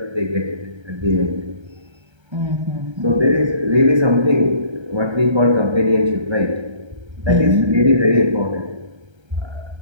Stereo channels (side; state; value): left; late; 1.3 ms